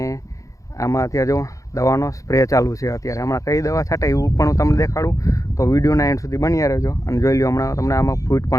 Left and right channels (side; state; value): right; late; 0.16 ms